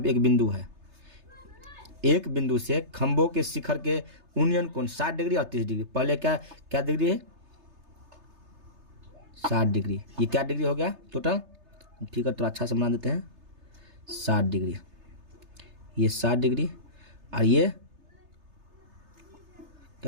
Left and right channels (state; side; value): late; left; 3.3 ms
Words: पे एक बिंदु है, एक बिंदु से खंभों के शिखर के उन्नयन कोण 60 डिग्री और 30 डिग्री। पहले क्या क्या डिग्री है, 60 डिग्री। ये क्या डिग्री हो गया टोटल? ठीक है, तो अच्छा से बना देते हैं, 60 डिग्री। ये 60 डिग्री और ये